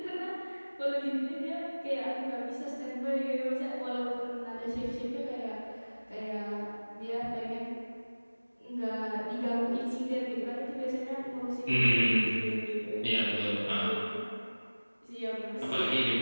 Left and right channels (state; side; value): inverted; both; correlation -1.00